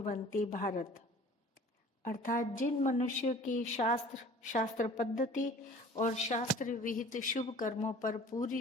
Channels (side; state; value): both; normal; correlation 0.47